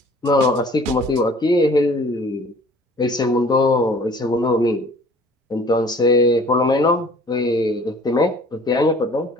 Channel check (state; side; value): normal; both; correlation 0.51